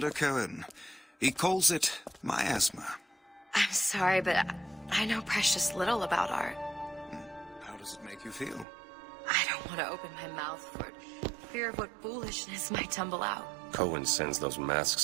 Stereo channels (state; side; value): drops out; left; at 8.7 s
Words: Cohen. He calls it miasma. I'm sorry, but I know precious little about art. How does it make you feel? I don't want to open my mouth for it. Fear of what foolishness might tumble out. Cohen sends those